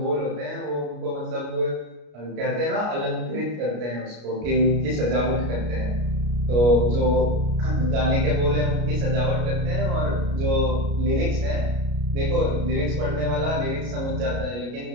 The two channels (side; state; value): left; late; 33 ms